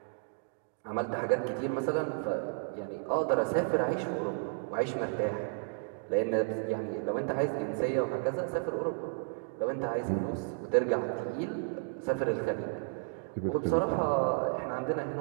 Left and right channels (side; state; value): left; silent; 56 dB below the other